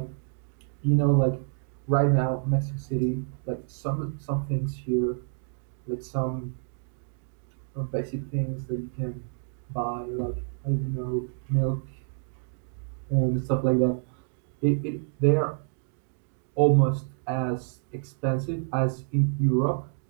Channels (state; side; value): silent; left; digital silence